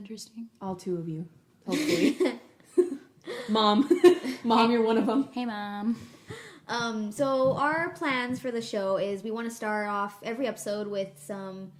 All 2 of you, hopefully. Mom. Mom, you're one of them. Hey, Mom. So our plans for the show is we want to start off every episode with some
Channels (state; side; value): identical; both; correlation 1.00